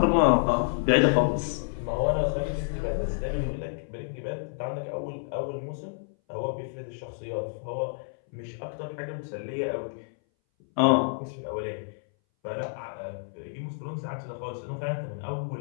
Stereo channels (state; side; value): silent; right; 58 dB below the other